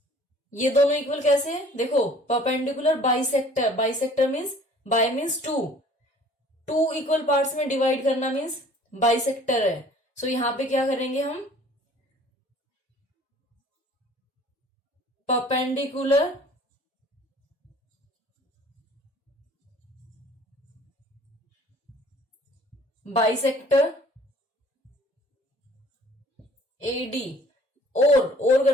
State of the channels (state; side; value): normal; both; correlation 0.52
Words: ये दोनों इक्वल कैसे है? देखो, perpendicular bisector, bisector means bi means two, two equal parts में डिवाइड करना मीन्स बाइसेक्टर है। सो यहां पे क्या करेंगे हम, परपेंडिकुलर बाइसेक्टर AD, और